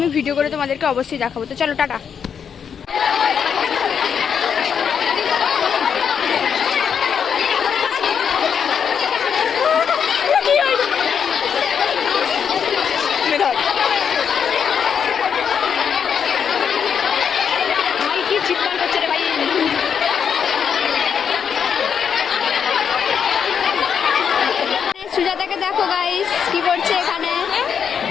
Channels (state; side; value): quieter; right; 7.3 dB